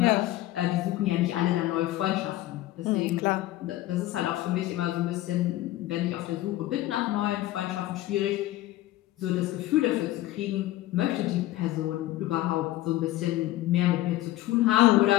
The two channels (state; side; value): quieter; right; 15.7 dB